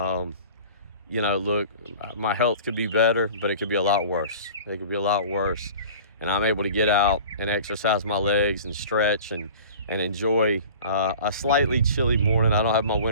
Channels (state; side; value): inverted; both; correlation -0.42